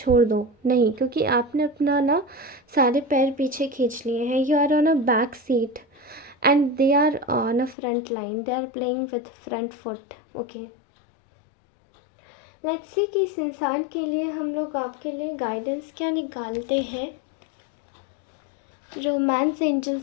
दो, नहीं, क्योंकि आपने अपना ना सारे पैर पीछे खींच लिए हैं। You are on a back seat and they are on a front line, they are playing with front foot. Okay, let's see कि इस इंसान के लिए हम लोग आपके लिए गाइडेंस क्या निकालते हैं। रोमांस एंजल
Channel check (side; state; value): right; drops out; at 7.8 s